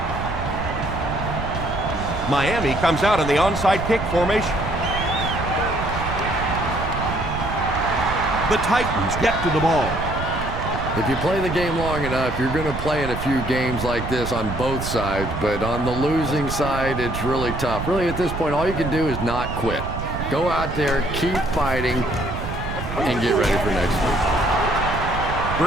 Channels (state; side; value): noise; right; rumble, 6 dB below the sound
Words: Miami comes out in the onside kick formation. The Titans get to the ball. If you play the game long enough, you're going to play in a few games like this on both sides, but on the losing side, it's really tough. Really, at this point, all you can do is not quit. Go out there, keep fighting, and get ready for next week.